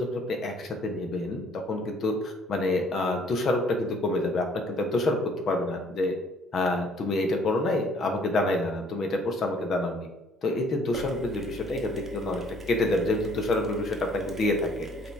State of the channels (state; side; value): normal; both; correlation 0.60